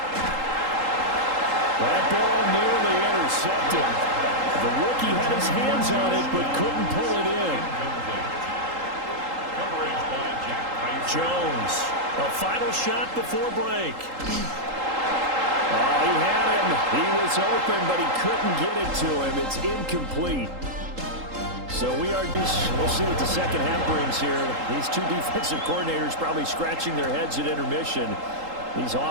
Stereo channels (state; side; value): late; left; 3.8 ms